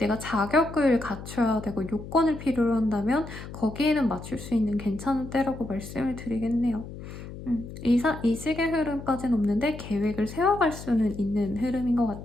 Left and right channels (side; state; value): left; noise; hum, 12 dB below the sound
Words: 자격을 갖춰야 되고 요건을 필요로 한다면 거기에는 맞출 수 있는 괜찮은 때라고 말씀을 드리겠네요. 이직의 흐름까지는 없는데 계획을 세워갈 수는 있는 흐름인 것